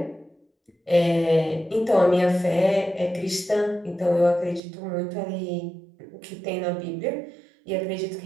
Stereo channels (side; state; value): left; drops out; at 4.6 s